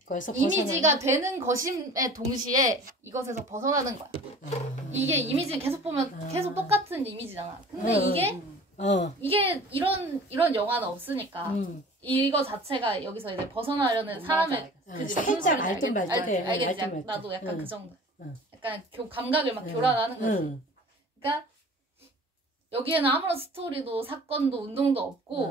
이미지가 되는 것임에 동시에 이것에서 벗어나는 거야. 이게 이미지는 계속 보면 계속 똑같은 이미지잖아. 근데 이게 이런 영화는 없으니까 이거 자체가 여기서 이제 벗어나려는 사람의 그지 살짝 알든 말든 알겠지. 나도 약간 그 정도. 약간 감각을 막 교란하는 거지. 그러니까 여기에는 아무런 스토리도 사건도 운동도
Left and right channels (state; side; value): normal; both; correlation 0.44